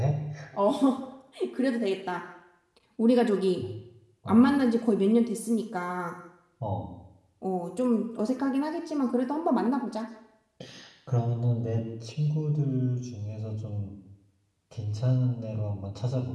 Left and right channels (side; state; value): both; identical; correlation 1.00